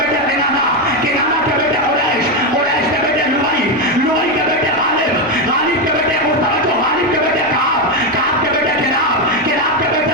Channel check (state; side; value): normal; both; correlation 0.08